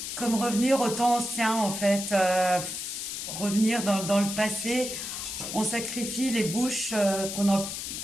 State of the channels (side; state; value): left; noise; hiss, 6 dB below the sound